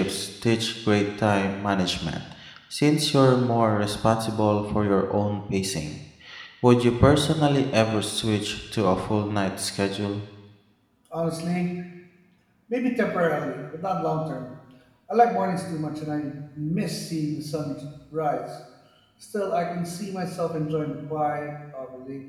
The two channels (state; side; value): identical; both; correlation 1.00